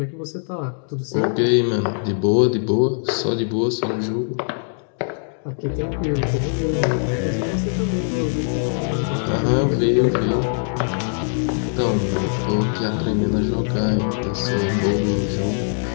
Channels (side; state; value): right; silent; digital silence